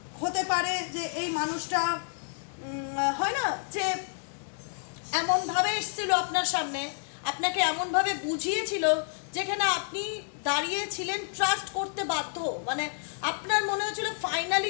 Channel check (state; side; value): silent; right; digital silence